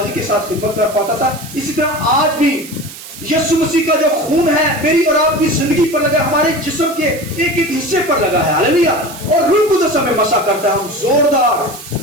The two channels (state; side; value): noise; right; hiss, 15 dB below the sound